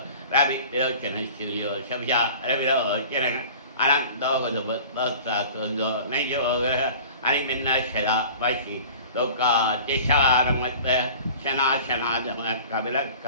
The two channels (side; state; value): both; inverted; correlation -0.42